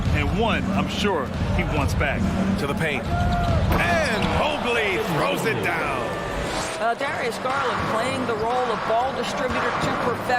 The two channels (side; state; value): both; identical; correlation 1.00